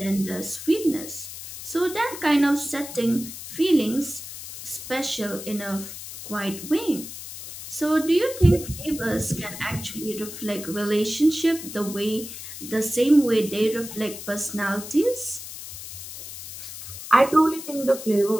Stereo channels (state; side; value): noise; left; hiss, 11 dB below the sound